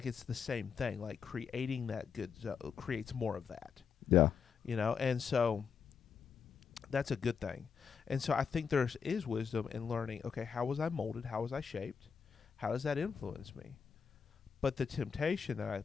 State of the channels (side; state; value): right; quieter; 6.5 dB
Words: it's the same thing. Like creating that good creates more of that. Yeah. You know, and so that's a good thing. And so I think there is wisdom in learning, okay, how was I molded? How was I shaped? How does that influence me? But the temptation that I